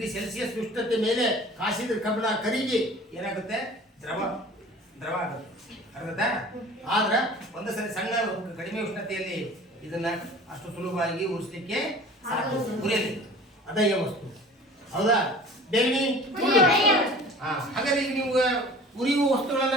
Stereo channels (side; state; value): both; normal; correlation 0.44